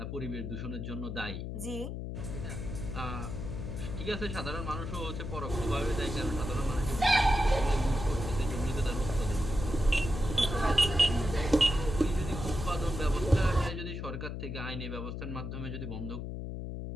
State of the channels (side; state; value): left; noise; hum, 5 dB below the sound